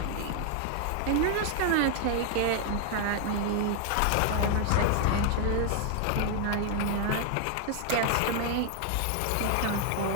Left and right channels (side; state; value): both; different; correlation 0.00